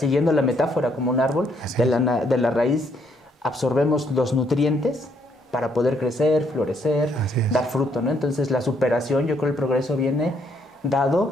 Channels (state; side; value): normal; both; correlation 0.71